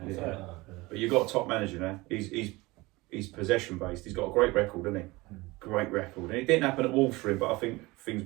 yeah. But you've got a top manager now. He's possession based. He's got a great record, hasn't he? Great record. And it didn't happen at Wolves for him, but I think things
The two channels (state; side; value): quieter; left; 21.9 dB